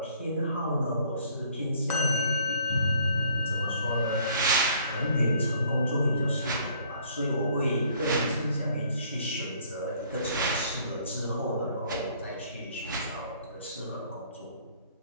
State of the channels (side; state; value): both; inverted; correlation -0.60